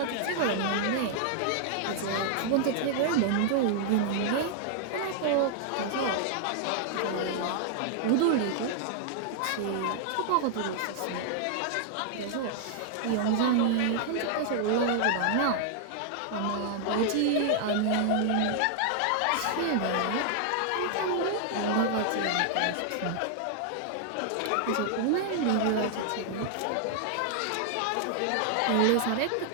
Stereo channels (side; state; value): both; different; correlation -0.01